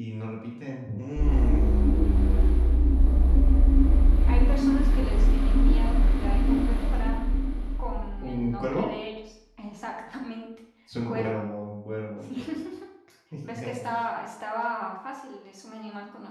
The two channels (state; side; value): identical; both; correlation 1.00